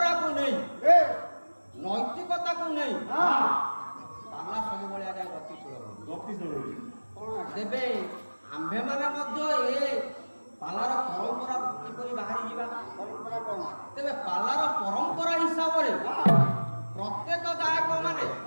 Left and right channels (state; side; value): inverted; both; correlation -1.00